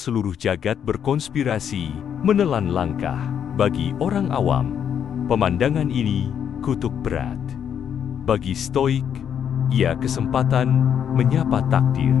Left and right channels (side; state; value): right; quieter; 8.5 dB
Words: jagat berkonspirasi menelan langkah. Bagi orang awam, pemandangan ini kutuk berat. Bagi stoik, ia kesempatan menyapa takdir.